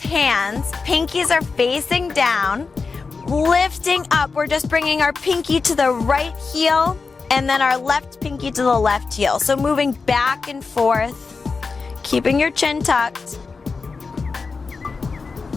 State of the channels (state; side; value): quieter; right; 4.6 dB